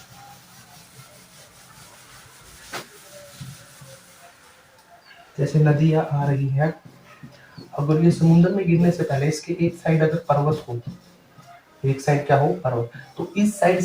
जैसे नदियां आ रही है, अगर ये समुद्र में गिरने से पहले इसके एक साइड अगर पर्वत हो, एक साइड क्या हो, पर्वत, तो इस साइड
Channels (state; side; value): identical; both; correlation 1.00